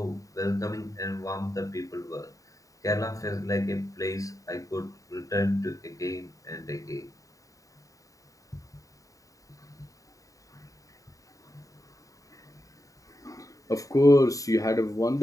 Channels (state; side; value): late; right; 0.16 ms